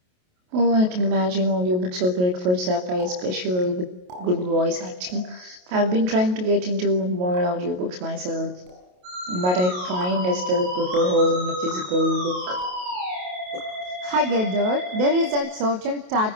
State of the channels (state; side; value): late; left; 28 ms